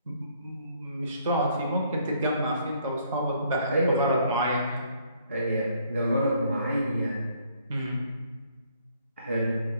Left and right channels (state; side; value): inverted; both; correlation -0.65